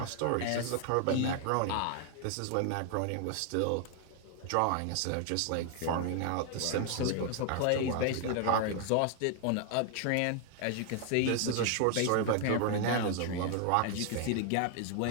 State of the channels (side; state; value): both; different; correlation 0.00